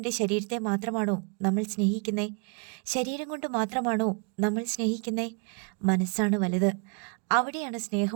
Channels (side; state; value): left; quieter; 37.2 dB